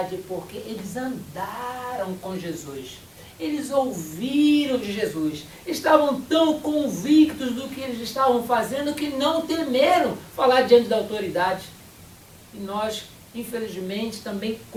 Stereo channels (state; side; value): identical; both; correlation 1.00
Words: porque eles andaram com Jesus. Eles ouviram de Jesus. Estavam tão convictos do que eles estavam fazendo que não temeram falar diante da autoridade. E nós, infelizmente, também